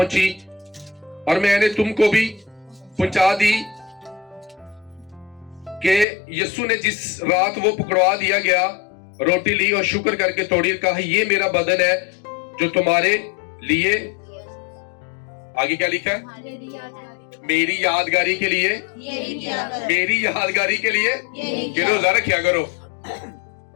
اور میں نے تم کو بھی پہنچا دی کہ یسوع نے جس رات وہ پکڑوا دیا گیا روٹی لی اور شکر کر کے توڑی اور کہا یہ میرا بدن ہے جو تمہارے لیے، آگے کیا لکھا ہے؟ میری یادگاری کے لیے، میری یادگاری کے لیے کہ روزہ رکھیا کرو.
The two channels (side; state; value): right; drops out; at 6.1 s